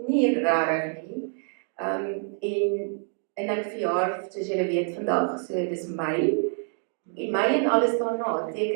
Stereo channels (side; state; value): left; silent; 56 dB below the other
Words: regtig nie. En ek verjaar, soos julle weet vandag, so dis Mei. En Mei en alles daarna